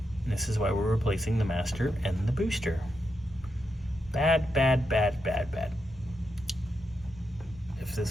And this is why we're replacing the master and the booster. Bad, bad, bad, bad, bad. If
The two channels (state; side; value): normal; both; correlation 0.84